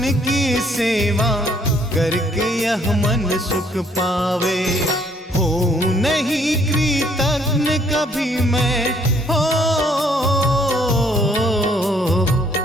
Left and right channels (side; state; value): both; normal; correlation 0.65